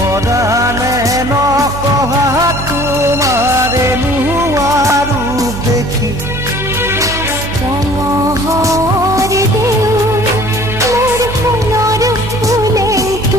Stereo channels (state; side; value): normal; both; correlation 0.51